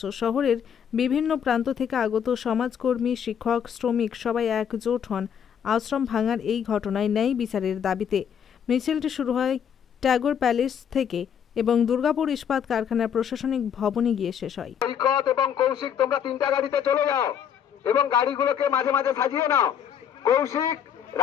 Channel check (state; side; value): quieter; right; 8.3 dB